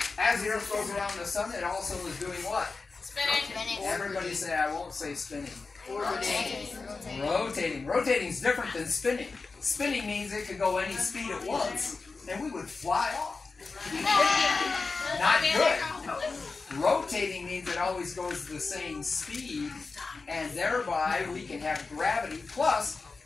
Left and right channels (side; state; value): right; quieter; 4.2 dB